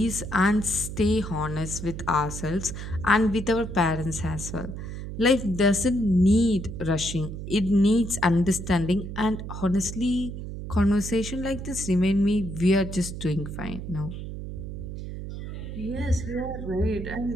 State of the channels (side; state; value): right; noise; hum, 8 dB below the sound